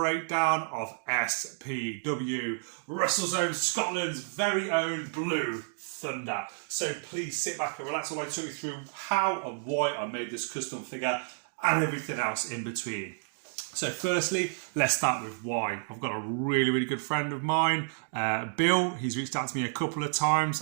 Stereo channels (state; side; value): silent; left; digital silence